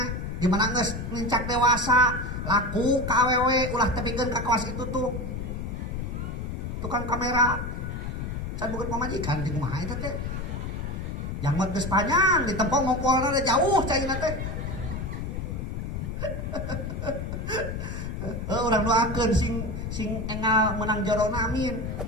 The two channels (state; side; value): noise; left; rumble, 5 dB below the sound